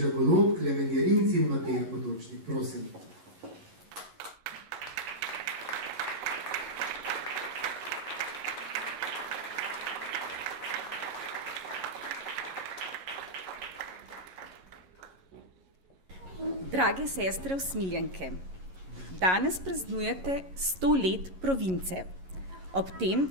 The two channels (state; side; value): late; left; 11 ms